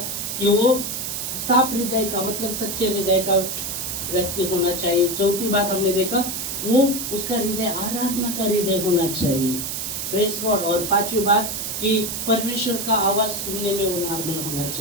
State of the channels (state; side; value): noise; right; hiss, 4 dB below the sound